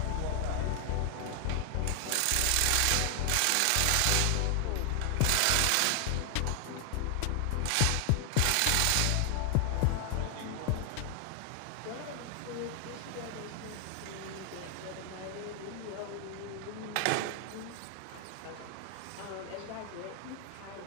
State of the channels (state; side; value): different; both; correlation 0.00